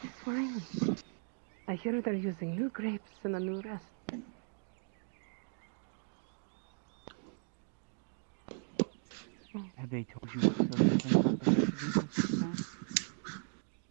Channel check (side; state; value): left; silent; 53 dB below the other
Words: this wine? I hear they're using new grapes and a new recipe. Have they told you what's so different about the recipe this time?